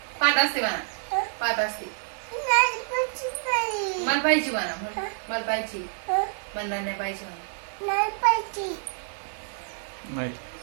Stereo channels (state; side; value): silent; left; 60 dB below the other